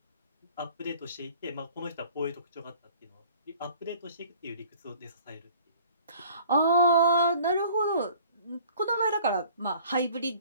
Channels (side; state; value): both; inverted; correlation -0.51